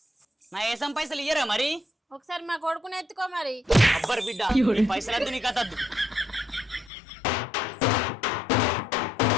నా ఏసం పైసలు ఇయ్యరా మరి? ఒకసారి మా కొడుకుని ఎత్తుకో మరి. అబ్బర్ బిడ్డ, నీ పైసలు వద్దు, నీ కథ వద్దు.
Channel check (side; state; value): right; drops out; at 6.9 s